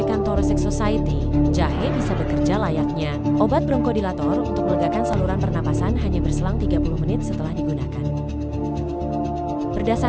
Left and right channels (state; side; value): identical; both; correlation 1.00